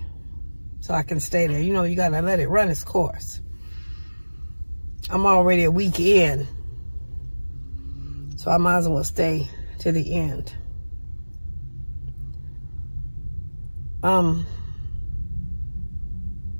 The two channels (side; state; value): both; inverted; correlation -1.00